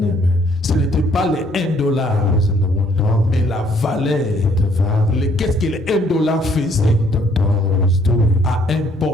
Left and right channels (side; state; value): both; normal; correlation 0.64